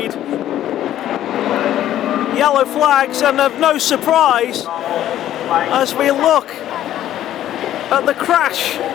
Yellow flags, and of no surprise as we look at the crash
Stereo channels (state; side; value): quieter; right; 12.3 dB